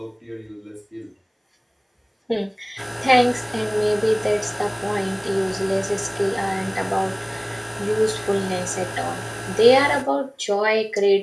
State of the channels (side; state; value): both; identical; correlation 1.00